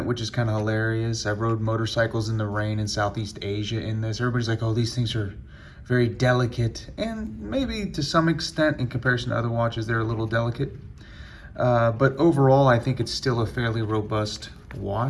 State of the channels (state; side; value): identical; both; correlation 1.00